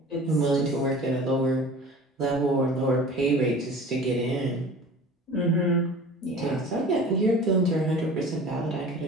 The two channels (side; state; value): both; normal; correlation 0.41